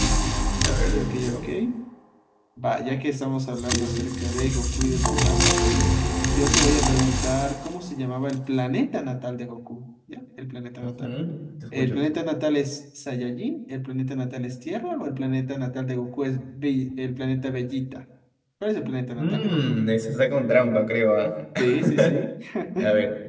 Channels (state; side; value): identical; both; correlation 1.00